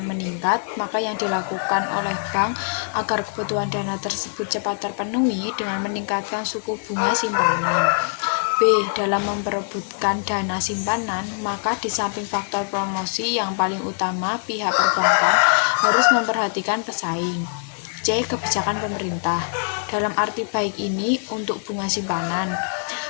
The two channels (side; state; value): right; silent; 63 dB below the other